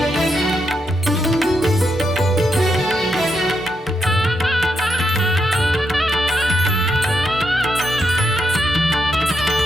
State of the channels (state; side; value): normal; both; correlation 0.81